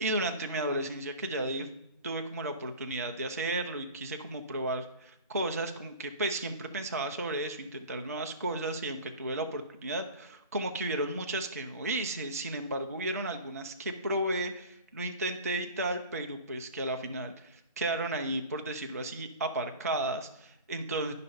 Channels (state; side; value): inverted; both; correlation -0.35